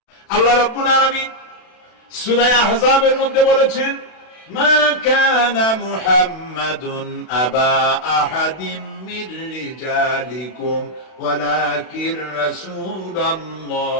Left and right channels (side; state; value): right; late; 32 ms